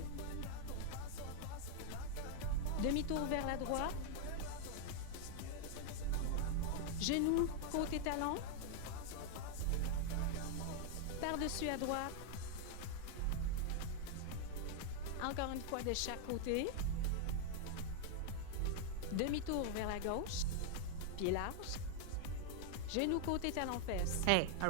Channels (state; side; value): different; both; correlation 0.00